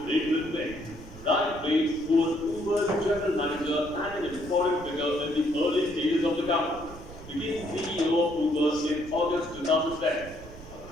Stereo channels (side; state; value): right; noise; rumble, 16 dB below the sound